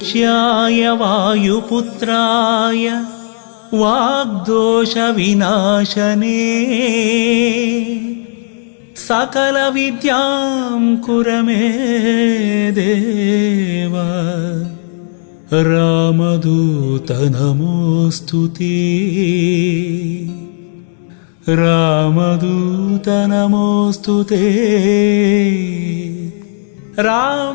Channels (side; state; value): right; silent; 68 dB below the other